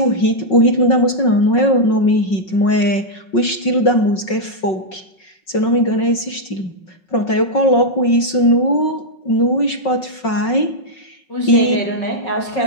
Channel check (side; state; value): right; late; 5.4 ms